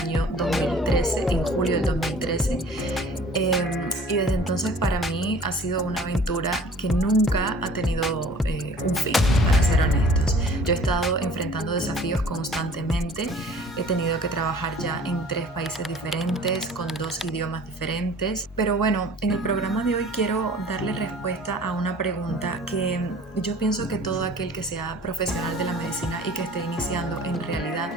2013, en julio del 2013. Y desde entonces para mí ha sido una aventura que nunca ha tenido un fin, para ser honestos. Yo he estado enfrentando desafíos constantemente, he tenido que trabajar ya en 3 países diferentes, con 2 idiomas diferentes. Pero bueno, en el programa de hoy quiero darle respuesta a una pregunta que yo pienso que todo aquel que sea profesional de la medicina y que esté iniciando, en realidad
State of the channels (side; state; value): both; normal; correlation 0.48